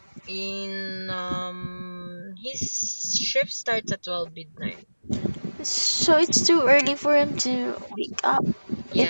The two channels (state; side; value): inverted; both; correlation -1.00